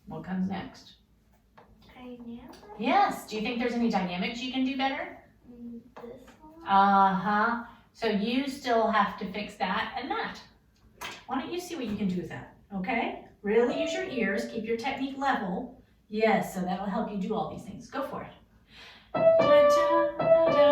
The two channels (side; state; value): both; identical; correlation 1.00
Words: What comes next? Dynamic. Yes. Do you think there's any dynamics you can do better? This one. Uh-huh. So you still have to fix that and that. Why don't you see what you can do with that, okay? Really use your ears, keep your technique level. Yes, so that'll help you do all these things. Go for it. One,